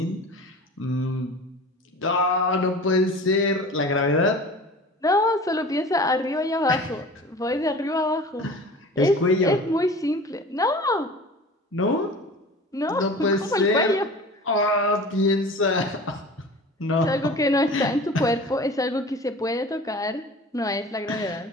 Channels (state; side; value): normal; both; correlation 0.39